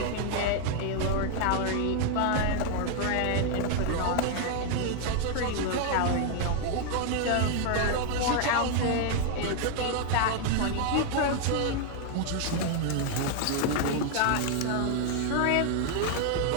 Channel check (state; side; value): different; both; correlation 0.00